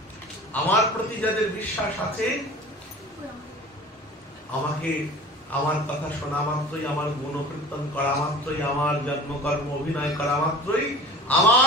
আমার প্রতি যাদের বিশ্বাস আছে, আমাকে আমার কথা শোনা মাত্রই, আমার গুণকীর্তন করা মাত্রই, আমার জন্মকর্ম অভিনয় করা মাত্রই,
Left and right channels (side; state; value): both; normal; correlation 0.40